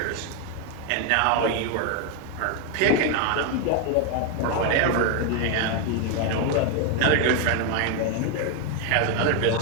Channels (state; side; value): different; both; correlation 0.01